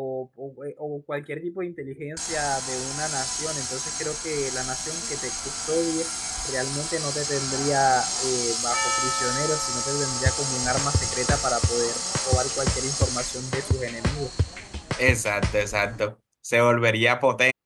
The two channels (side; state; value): both; identical; correlation 1.00